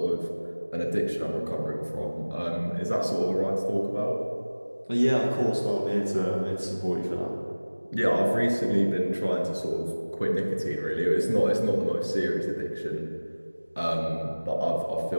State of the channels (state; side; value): inverted; both; correlation -1.00